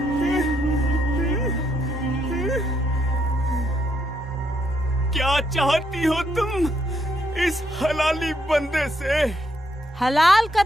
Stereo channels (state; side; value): normal; both; correlation 0.76